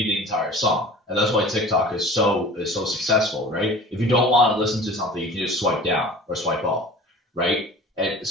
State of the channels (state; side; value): normal; both; correlation 0.41